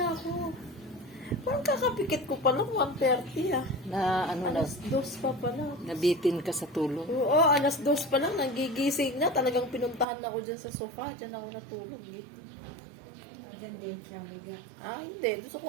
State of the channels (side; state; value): left; drops out; at 10.1 s